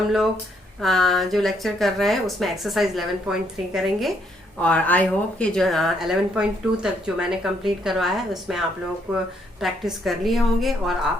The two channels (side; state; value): both; normal; correlation 0.72